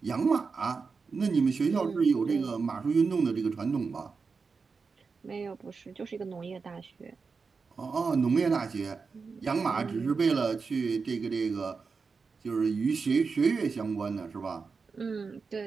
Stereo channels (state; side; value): quieter; left; 4.9 dB